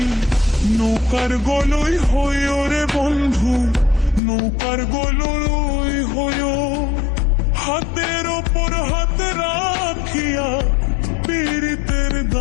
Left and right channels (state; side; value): drops out; right; at 4.2 s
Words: নৌকার গলই হইও রে বন্ধু, নৌকার গলই হইও। হাতের ওপর হাত রাখিয়া পীড়িতের